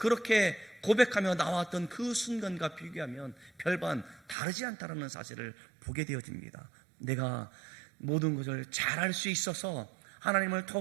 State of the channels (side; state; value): left; drops out; at 4.4 s